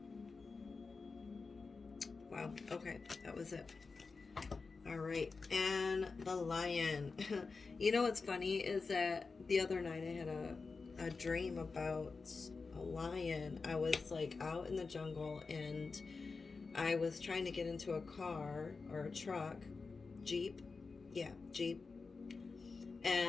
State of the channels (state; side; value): quieter; right; 4.4 dB